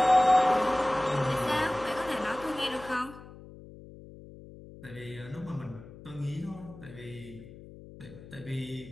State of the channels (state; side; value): noise; left; hum, 17 dB below the sound